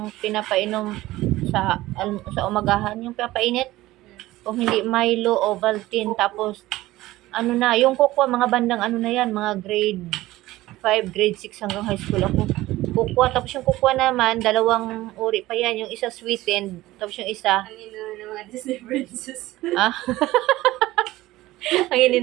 pinapainom sa umagahan, yung pinapainit. Kung hindi Milo, Ovaltine, tapos, yung cocoa, mga bandang na yan, mga grade 5, grade 6 hanggang high school ako. Cocoa, tapos yung cocoa naman, dalawang uri pa yan, yung isa sweetened, tapos yung isa, Ang ino ng mga Disney princess. ang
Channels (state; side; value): quieter; left; 17.3 dB